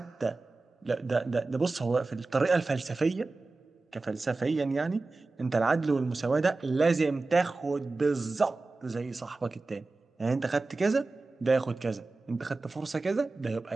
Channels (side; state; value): left; quieter; 3.5 dB